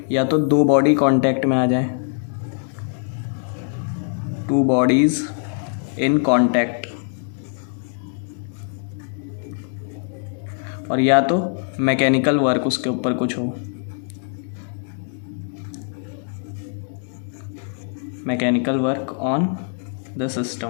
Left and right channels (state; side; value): silent; right; 64 dB below the other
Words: या तो दो बॉडी कांटेक्ट में आ जाए, टू बॉडीज़ इन कांटेक्ट, और या तो मैकेनिकल वर्क उसके ऊपर कुछ हो, mechanical work on the